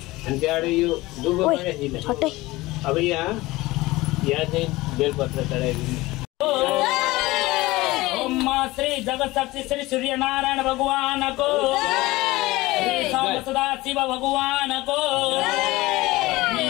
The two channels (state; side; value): quieter; right; 19.7 dB